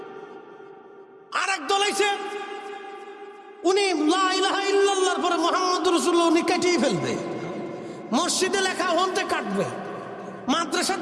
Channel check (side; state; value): both; identical; correlation 1.00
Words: আর এক দল আইছে, উনি লা ইলাহা ইল্লাল্লাহর পরে মুহাম্মদুর রাসূলুল্লাহ উনি কাটিয়ে ফেলবে। মসজিদে লেখা ওখান থেকে কাটবে, মাদ্রাসার